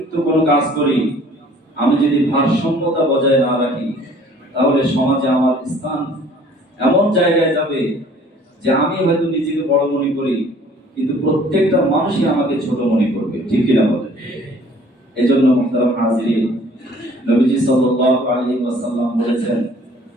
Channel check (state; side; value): normal; both; correlation 0.54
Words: কোনো কাজ করি, আমি যদি ভারসাম্যতা বজায় না রাখি, তাহলে সমাজে আমার স্থান এমন জায়গায় যাবে যে আমি হয়তো নিজেকে বড় মনে করি, কিন্তু প্রত্যেকটা মানুষই আমাকে ছোট মনে করবে, ঠিক কিনা বলেন? এজন্য মুহতারাম হাজিরিন, নবীজি সাল্লাল্লাহু আলাইহি ওয়াসাল্লাম বলেছেন,